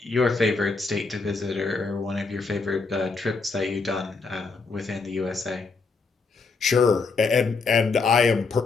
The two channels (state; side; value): quieter; right; 4.3 dB